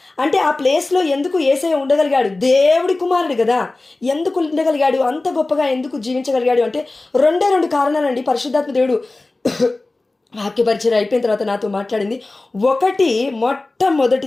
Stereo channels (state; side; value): quieter; right; 3.1 dB